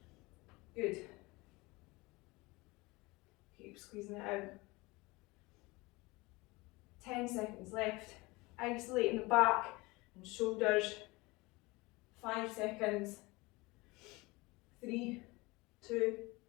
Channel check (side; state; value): right; quieter; 23.3 dB